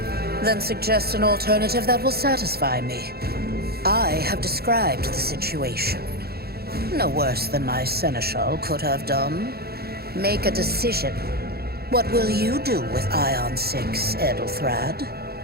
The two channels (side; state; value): left; late; 0.46 ms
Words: Then suggest an alternative that will satisfy me. I have described the situation. No worse than my seneschal could have done. Make a decision. What will you do with Ion 6, Edelthrad?